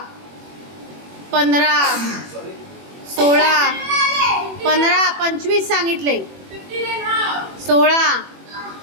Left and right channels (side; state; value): left; late; 21 ms